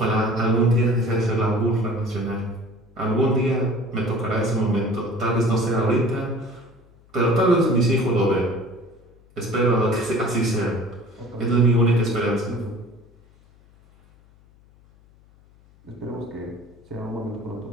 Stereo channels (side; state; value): left; noise; hum, 28 dB below the sound